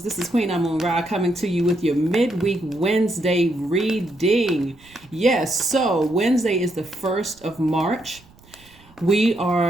This is Queen Amun Ra coming to you with your midweek Wednesday reading. Yes, so Wednesday is the 1st of March. We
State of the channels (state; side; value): noise; right; rumble, 27 dB below the sound